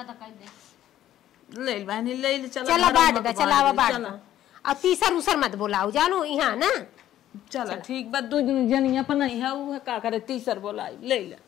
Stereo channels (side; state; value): right; quieter; 12.3 dB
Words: कर दे ले बहनी ले ले चला बांट दे चलावा बांट दे। अब तीसर उसर मत बोलाओ जानू यहां ना। चला ठीक बा दो जनिया पर नहीं है वो का करे तीसर बोलाई ले ले